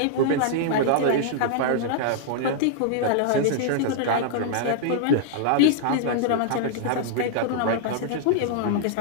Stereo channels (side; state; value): both; different; correlation -0.01